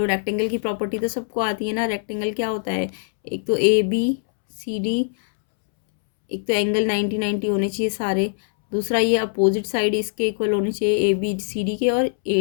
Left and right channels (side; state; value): right; silent; 64 dB below the other